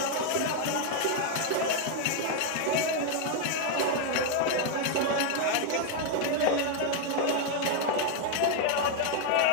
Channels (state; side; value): different; both; correlation 0.00